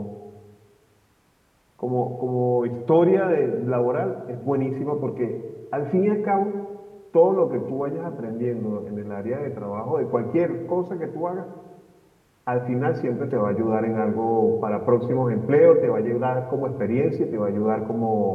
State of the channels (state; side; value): identical; both; correlation 1.00